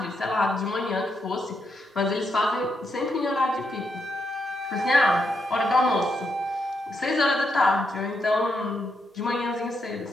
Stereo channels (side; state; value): both; normal; correlation 0.81